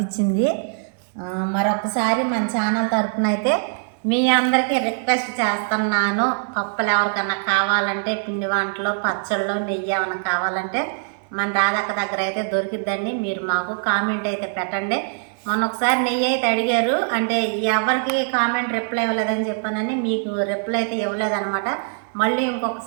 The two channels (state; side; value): silent; left; digital silence